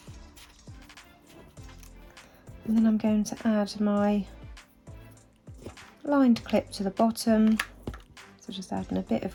And then I'm going to add my lined clip to the bottom. So just adding a bit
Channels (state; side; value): identical; both; correlation 1.00